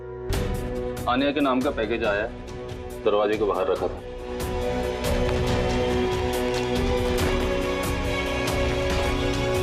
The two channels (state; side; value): identical; both; correlation 1.00